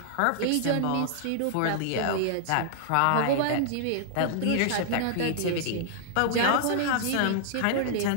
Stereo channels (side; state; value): both; different; correlation -0.01